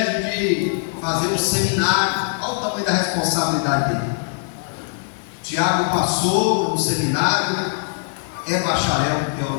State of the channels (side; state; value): right; silent; digital silence